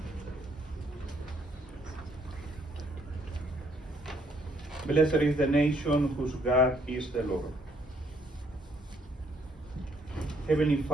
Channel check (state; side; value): normal; both; correlation 0.67